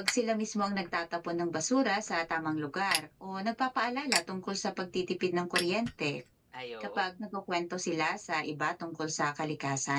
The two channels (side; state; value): both; identical; correlation 1.00